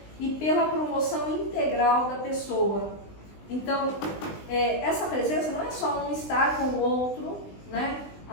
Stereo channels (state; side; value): late; right; 20 ms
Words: e pela promoção integral da pessoa. Então, essa presença não é só um estar com o outro, né,